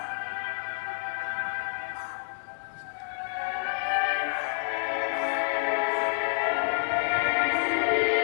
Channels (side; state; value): right; silent; digital silence